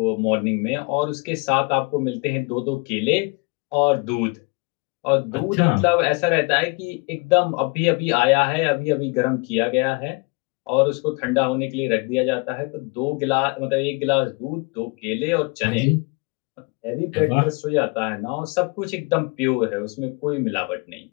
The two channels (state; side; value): quieter; right; 30.3 dB